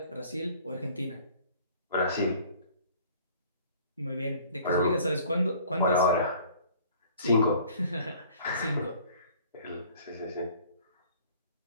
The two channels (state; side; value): inverted; both; correlation -0.52